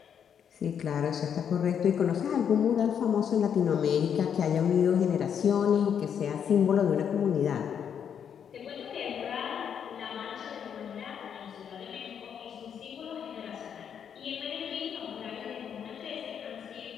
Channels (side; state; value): right; quieter; 8.1 dB